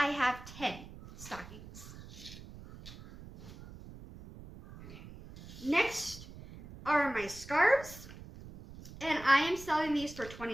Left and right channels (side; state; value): right; noise; rumble, 16 dB below the sound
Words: have 10 stockings. Okay. Next are my scarves. And I am selling these for